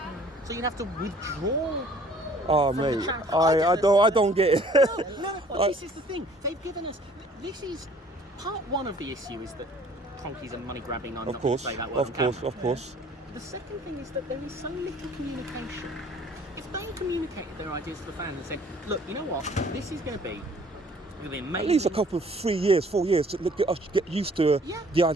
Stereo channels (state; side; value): normal; both; correlation 0.55